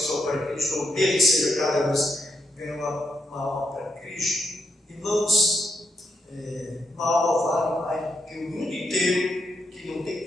para Cristo, ou mesmo seja cada vez ganha uma alma para Cristo, irmãos, uma alma vale mais do que o mundo inteiro que não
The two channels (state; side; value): normal; both; correlation 0.81